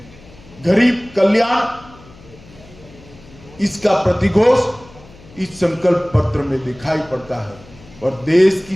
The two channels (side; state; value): left; noise; hum, 23 dB below the sound